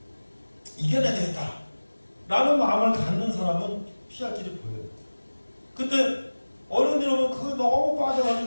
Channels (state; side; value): inverted; both; correlation -1.00